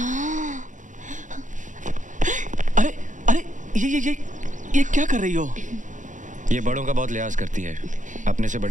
अरे अरे ये क्या कर रही हो? ये बड़ों का बहुत लिहाज करती है, अपने से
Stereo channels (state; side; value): late; left; 0.37 ms